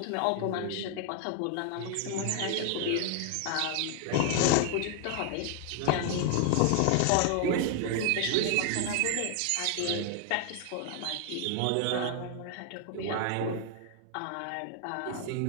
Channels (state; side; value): different; both; correlation 0.00